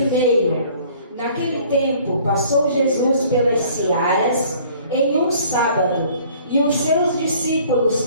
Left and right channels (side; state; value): both; inverted; correlation -0.54